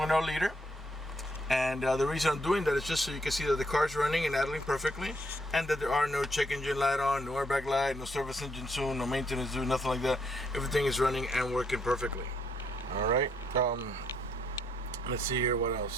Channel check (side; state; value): both; normal; correlation 0.72